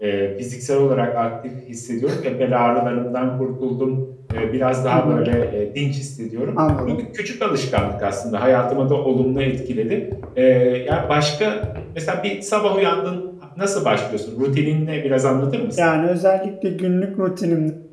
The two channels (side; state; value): both; identical; correlation 1.00